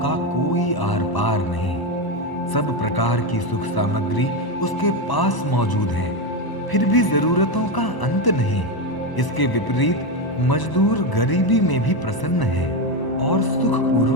कोई आर पार नहीं। सब प्रकार की सुख सामग्री उसके पास मौजूद है, फिर भी जरूरतों का अंत नहीं। इसके विपरीत मजदूर गरीबी में भी प्रसन्न है और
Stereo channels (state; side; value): late; right; 1.0 ms